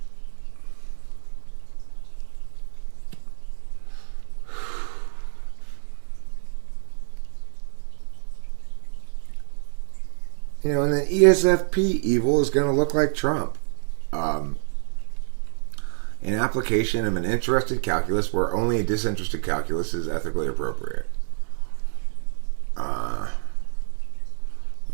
And then ESFP evil is going to look like Trump. An application of an interested calculus where only a disinterested calculus is ethically appropriate.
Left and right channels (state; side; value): silent; left; digital silence